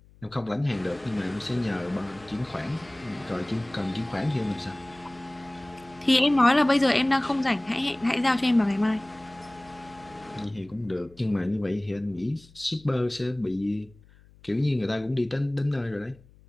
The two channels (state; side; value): noise; left; hum, 26 dB below the sound